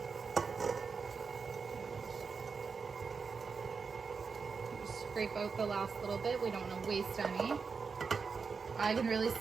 Scrape out the last little bit. We don't want to waste any. I can really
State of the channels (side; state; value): left; quieter; 5.2 dB